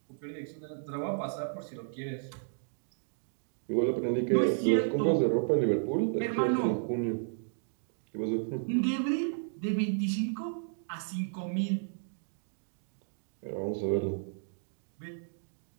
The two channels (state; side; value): silent; left; digital silence